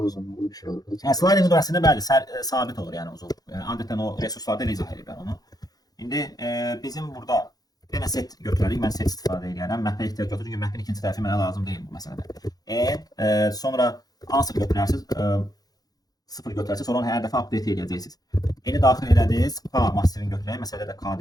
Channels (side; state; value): right; late; 0.19 ms